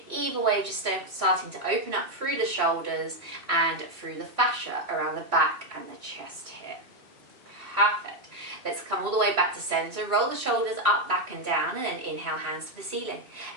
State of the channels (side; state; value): left; late; 2.7 ms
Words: Either way, just starting to open up through the shoulders and through the fascia around the back and the chest here. Perfect. Let's come all the way back to center. Roll the shoulders up, back and down, and then inhale, hands to the ceiling.